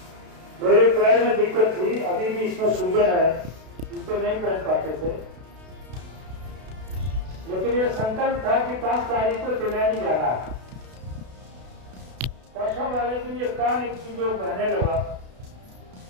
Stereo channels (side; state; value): left; late; 32 ms